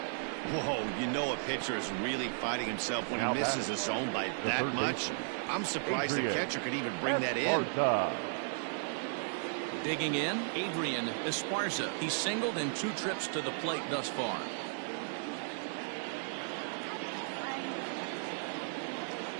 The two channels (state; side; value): silent; left; digital silence